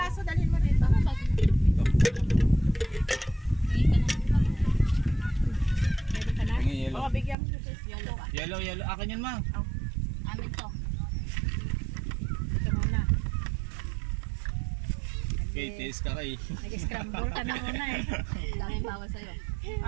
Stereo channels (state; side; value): drops out; left; at 7.4 s